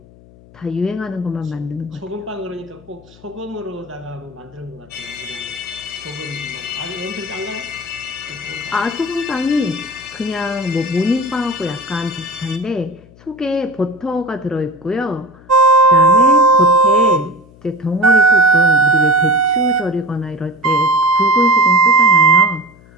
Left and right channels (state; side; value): noise; left; hum, 25 dB below the sound